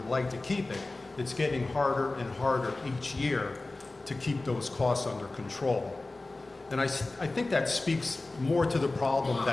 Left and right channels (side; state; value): right; quieter; 3.1 dB